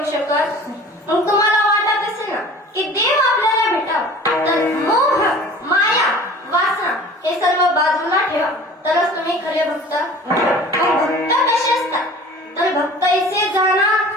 शकत नाही. मग तुम्हाला वाटत असेल ना की देव आपल्याला भेटावं, तर मोह माया वासना हे सर्व बाजूला ठेवा, तरच तुम्ही खरे भक्त. मग भक्त कसे असतात? तर भक्त ऐसे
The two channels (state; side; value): normal; both; correlation 0.44